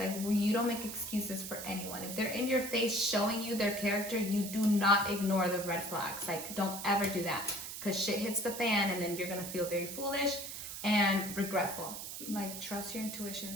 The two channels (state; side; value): noise; right; hiss, 8 dB below the sound